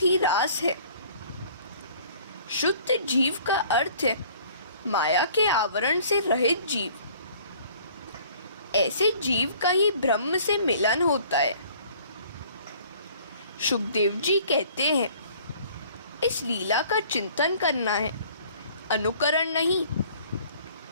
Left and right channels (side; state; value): both; inverted; correlation -0.53